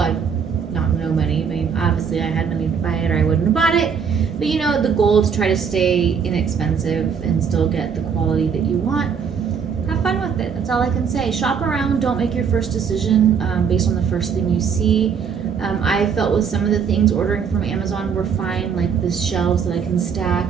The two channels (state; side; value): quieter; left; 6.6 dB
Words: not no money. I mean, obviously I had money to buy it or I wouldn't have bought it. But you know, the goal is to try to stay inexpensive and still get the quality that you want. Have fun with it. That's all I can say. Shop around. Don't make your first decision based on the first thing you see. I felt with some of the things ordering from Amazon were fine, like the shelves that I can